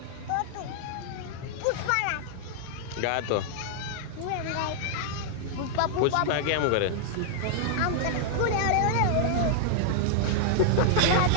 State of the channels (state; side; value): different; both; correlation -0.01